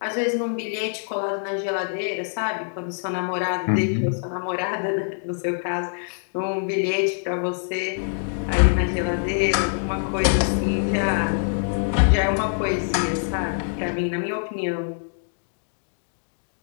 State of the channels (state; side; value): silent; right; digital silence